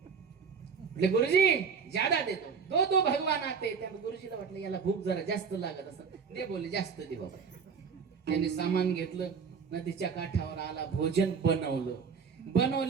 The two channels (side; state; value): left; quieter; 6.0 dB